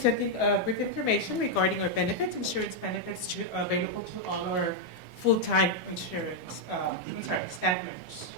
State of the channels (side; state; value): both; normal; correlation -0.01